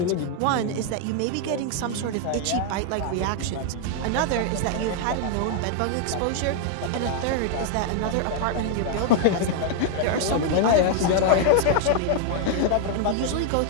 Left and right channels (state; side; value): different; both; correlation 0.00